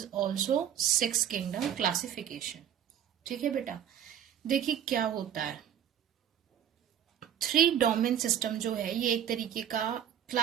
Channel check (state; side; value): quieter; left; 9.9 dB